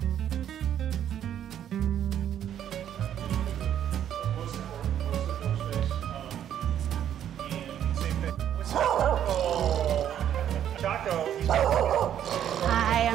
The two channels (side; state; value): left; quieter; 10.2 dB